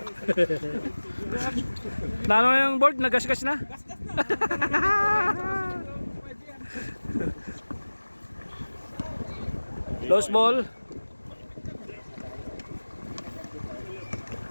Nano yung board? Nagasgas na? Lost ball.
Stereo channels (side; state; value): both; inverted; correlation -1.00